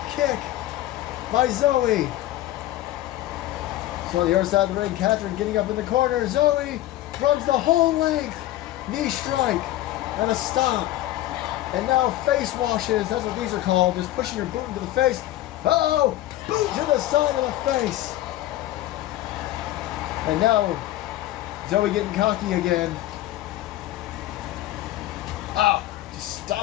kick by Zoe. So on the other side of the ring, Catherine getting up in the corner. Zoe runs the whole length. Knee strike and a stop. And now face washes. That's what these are called. Just pushing her boot into the face. Uh-oh. Boot to the side of the face. And now Zoe getting cocky again. Ah, just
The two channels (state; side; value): quieter; right; 14.9 dB